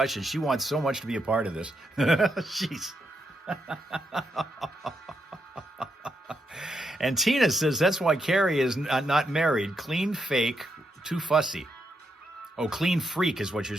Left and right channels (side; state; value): both; normal; correlation 0.81